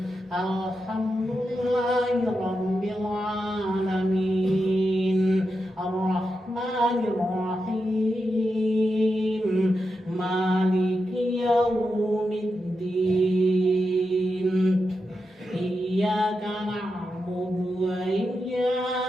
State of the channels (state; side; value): normal; both; correlation 0.87